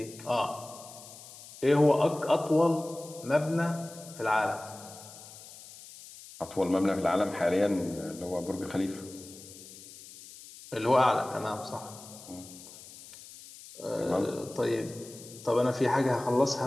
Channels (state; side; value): noise; left; hiss, 17 dB below the sound